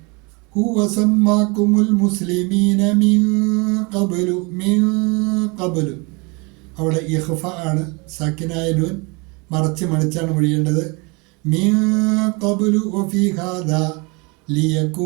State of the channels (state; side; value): quieter; left; 29.1 dB